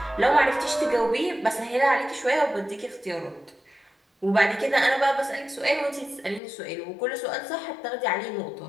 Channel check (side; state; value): right; drops out; at 6.4 s